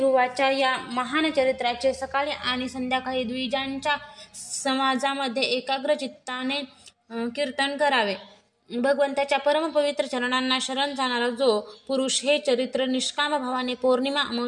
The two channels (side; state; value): both; identical; correlation 1.00